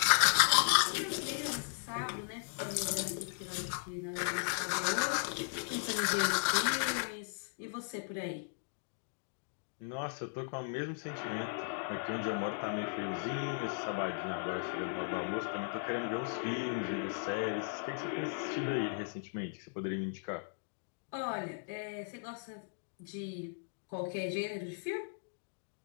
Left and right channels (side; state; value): right; silent; digital silence